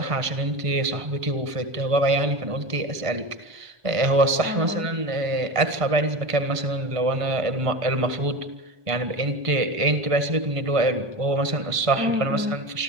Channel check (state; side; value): late; left; 1.5 ms